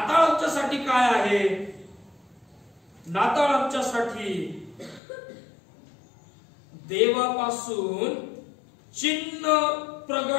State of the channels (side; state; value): right; drops out; at 5.0 s